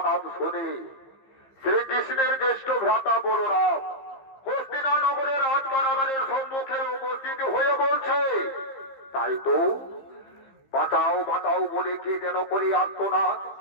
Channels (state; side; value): late; right; 15 ms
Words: শুনে শ্রীকৃষ্ণের জ্যেষ্ঠ ভ্রাতা বলরাম হস্তিনানগরের রাজকারাগারের সম্মুখে উপস্থিত হয়ে বলছে, তাই তো বাঁচাও বাঁচাও বলে কে যেন করে আত্মনাদ।